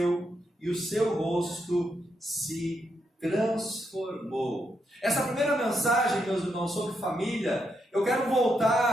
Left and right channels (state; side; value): normal; both; correlation 0.81